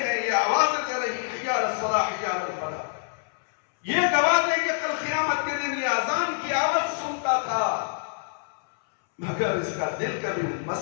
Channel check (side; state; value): right; silent; 61 dB below the other